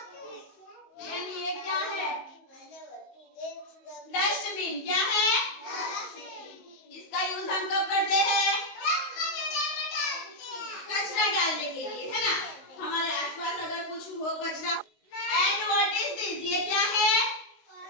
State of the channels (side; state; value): right; late; 19 ms